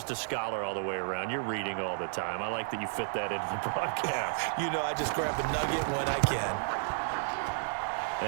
a scholar all the way around. You're reading all the time. I like that you fit that into the broadcast. You know, I just grab a nugget when I can.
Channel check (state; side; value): silent; left; digital silence